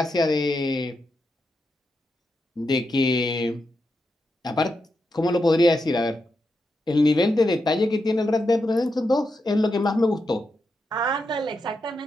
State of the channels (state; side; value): normal; both; correlation 0.86